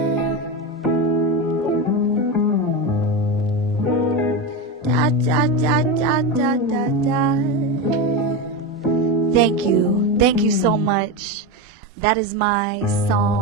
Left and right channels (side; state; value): both; normal; correlation 0.17